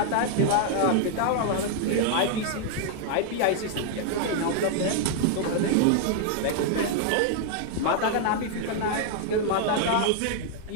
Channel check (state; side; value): different; both; correlation 0.00